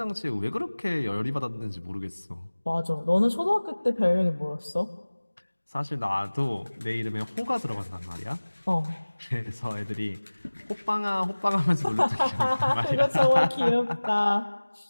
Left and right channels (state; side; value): inverted; both; correlation -1.00